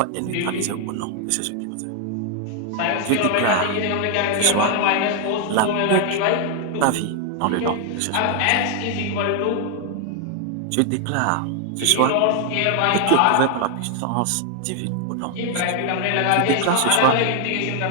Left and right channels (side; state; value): both; different; correlation 0.00